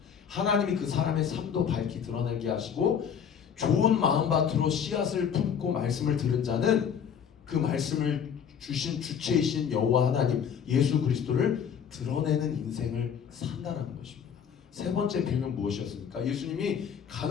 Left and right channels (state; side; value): quieter; right; 7.8 dB